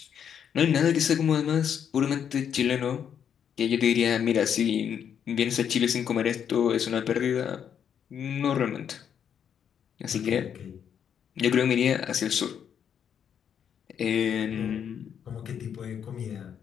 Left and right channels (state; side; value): quieter; right; 8.3 dB